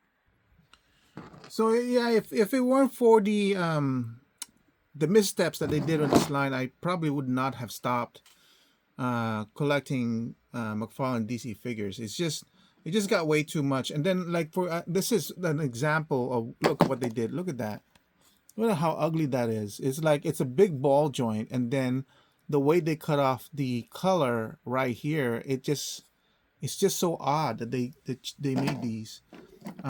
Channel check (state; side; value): identical; both; correlation 1.00